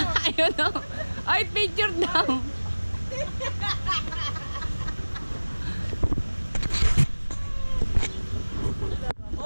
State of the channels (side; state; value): both; inverted; correlation -1.00